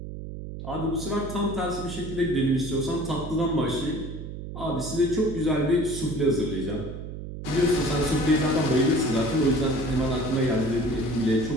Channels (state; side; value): noise; right; hum, 9 dB below the sound